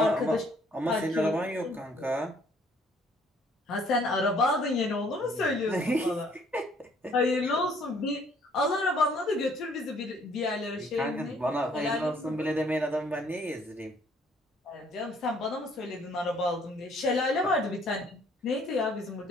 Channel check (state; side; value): normal; both; correlation 0.62